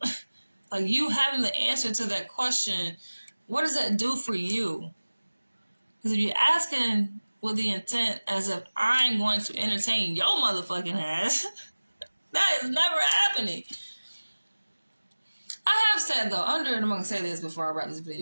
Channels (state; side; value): inverted; both; correlation -1.00